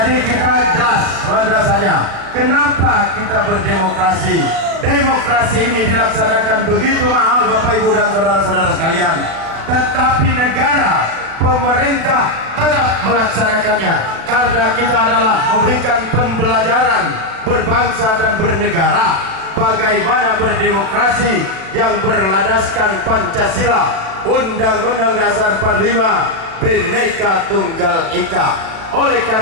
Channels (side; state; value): left; late; 37 ms